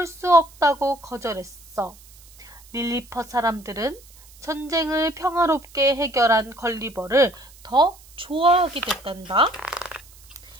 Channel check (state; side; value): noise; right; hiss, 23 dB below the sound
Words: 수 없다고 거절했어. 릴리퍼 사람들은 전쟁을 평화롭게 해결한 걸리버를 더 좋아하게 됐단다.